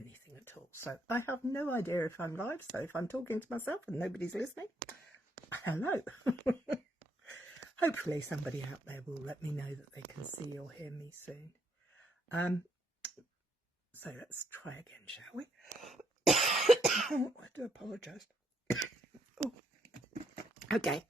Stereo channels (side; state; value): both; normal; correlation 0.73